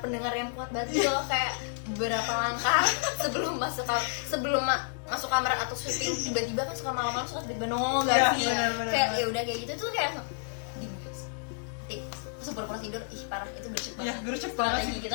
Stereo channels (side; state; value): right; silent; digital silence